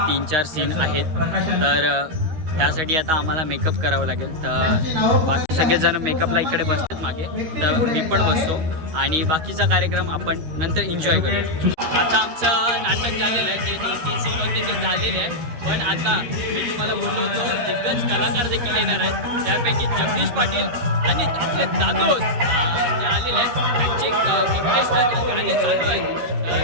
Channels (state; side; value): late; left; 13 ms